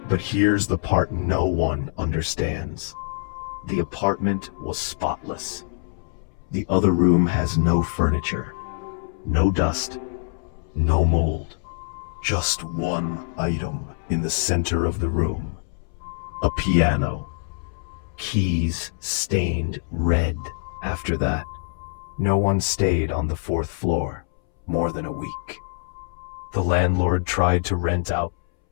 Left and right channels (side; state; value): right; silent; 62 dB below the other